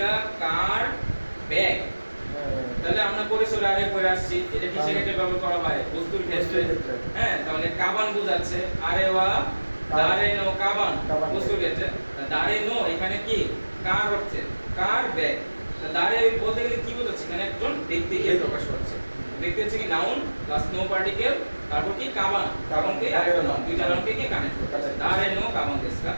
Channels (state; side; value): inverted; both; correlation -1.00